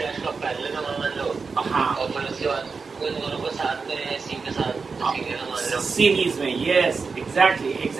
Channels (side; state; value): left; quieter; 4.8 dB